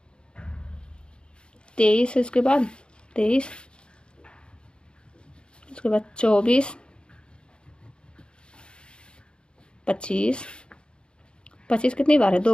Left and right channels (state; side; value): late; right; 0.053 ms